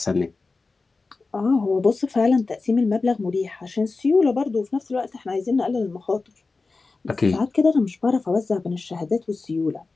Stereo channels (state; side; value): quieter; right; 3.9 dB